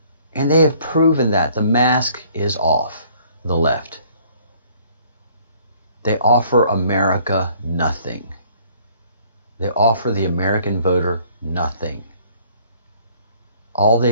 And they have proven that the mask is off, the left. They offer America nothing. They offer the American voter nothing. All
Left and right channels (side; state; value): both; inverted; correlation -0.58